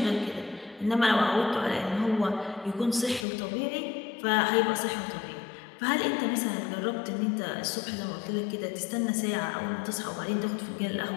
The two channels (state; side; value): drops out; right; at 3.2 s